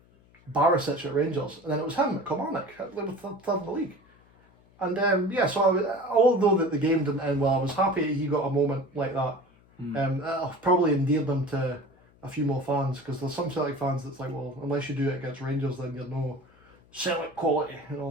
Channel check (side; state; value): left; noise; hum, 29 dB below the sound